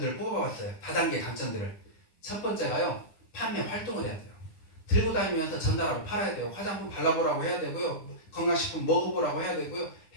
뽑아봤어요. 다단계 단점들을. 첫 번째가요, 판매 활동을 해야 돼요. 들고 다니면서 전달하고 팔아야 돼요. 화장품 발라보라고 해야 되고요. 건강식품 먹어보라고 해야 되고요.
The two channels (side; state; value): right; late; 9.8 ms